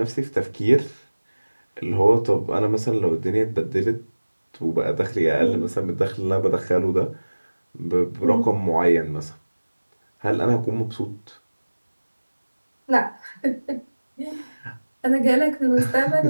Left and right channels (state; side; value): inverted; both; correlation -1.00